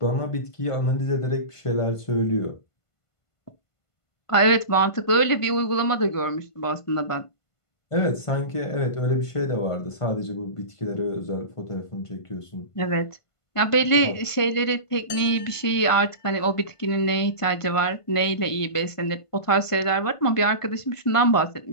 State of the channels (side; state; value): right; late; 1.5 ms